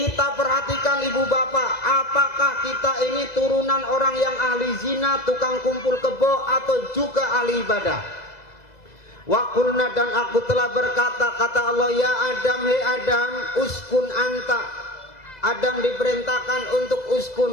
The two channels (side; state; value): right; late; 2.0 ms